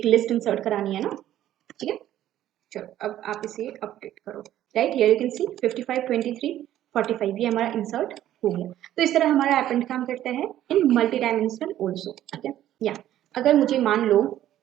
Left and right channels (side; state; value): left; quieter; 12.5 dB